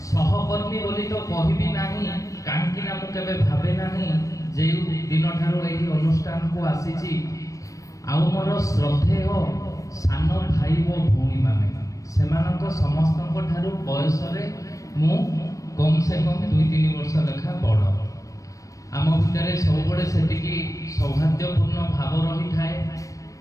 सहकर्मी बोली तो कहबी नाही काहेकि ना मु केबे भाबे नाही जे दिन ठारो एही अनुष्ठान को आसीची आउ मोर श्रद्धेय सान भाई वो भूमि माने सेमानक समस्तक ठारू बयस रे मु कम से कम 2-3 वर्ष लेखा बड़ आम भितर सबुबले सेतिकी सौभाग्यपूर्ण भाव रही थाए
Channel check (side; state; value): right; late; 0.16 ms